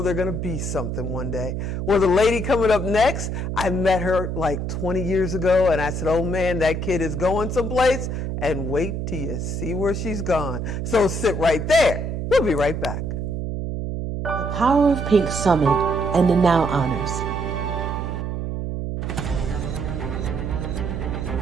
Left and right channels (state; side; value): noise; right; hum, 3 dB below the sound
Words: they're going to be something one day. Well, the lady coming up next, I met her like 20 years ago, and I said, oh man, that kid is going someplace, and wait till you see where she's gone. So sit right there. We'll be right back. The Power of Pink Summit and the Now Honors.